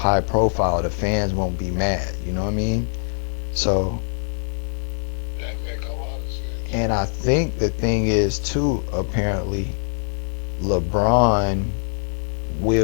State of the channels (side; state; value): right; silent; 62 dB below the other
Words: profile the fans won't be mad. You know what I mean? So, and I think the thing is too, apparently, LeBron